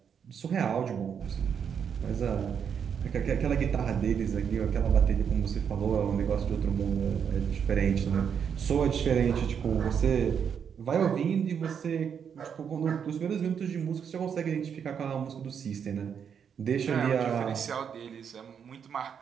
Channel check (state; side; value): quieter; left; 7.5 dB